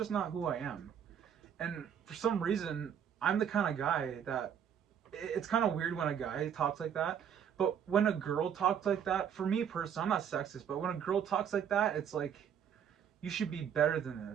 not who I am. And for some reason, I'm the kind of guy that it's kind of weird when a guy talks like that. But when a girl talks like that, for me personally, I'm not sexist, but when a girl talks like that, it's like you should be better than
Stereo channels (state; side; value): quieter; left; 8.4 dB